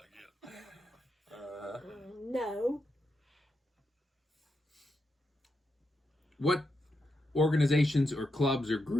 get. No. What organizations or clubs or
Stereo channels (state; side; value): normal; both; correlation 0.85